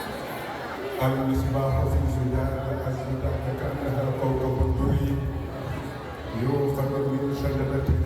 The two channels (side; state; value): both; identical; correlation 1.00